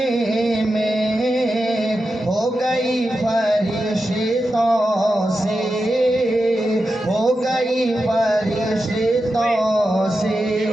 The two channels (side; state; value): both; normal; correlation 0.90